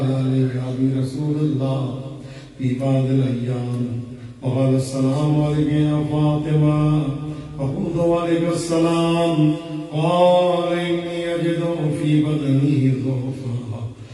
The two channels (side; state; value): both; identical; correlation 1.00